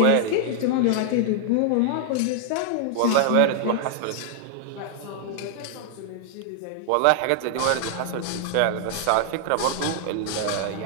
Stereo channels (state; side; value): different; both; correlation 0.00